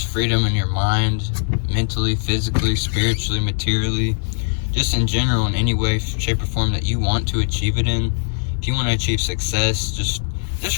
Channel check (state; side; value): silent; right; digital silence